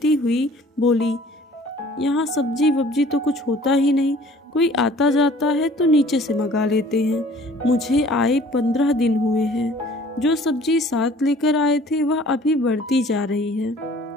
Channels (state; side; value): normal; both; correlation 0.52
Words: हुई बोली, यहाँ सब्जी वब्जी तो कुछ होता ही नहीं, कोई आता जाता है तो नीचे से मंगा लेते हैं। मुझे आए 15 दिन हुए हैं। जो सब्जी साथ लेकर आए थे वह अभी बढ़ती जा रही है।